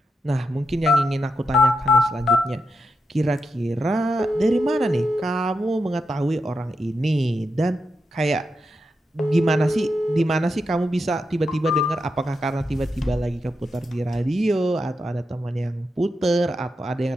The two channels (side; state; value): both; normal; correlation 0.86